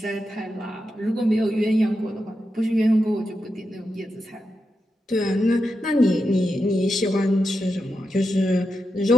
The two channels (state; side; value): normal; both; correlation 0.87